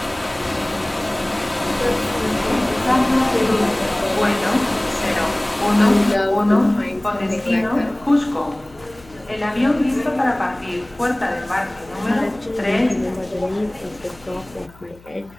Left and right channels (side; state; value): left; noise; hum, 25 dB below the sound